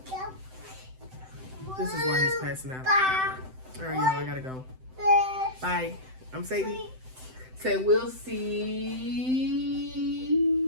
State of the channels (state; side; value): late; left; 7.8 ms